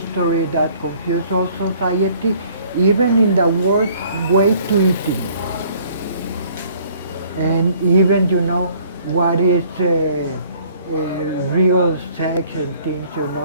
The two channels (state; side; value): inverted; both; correlation -0.58